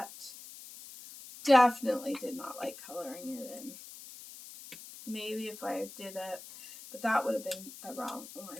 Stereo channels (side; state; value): left; noise; hiss, 15 dB below the sound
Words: definitely did not like coloring it in. Maybe if I did it, but that would have been the wrong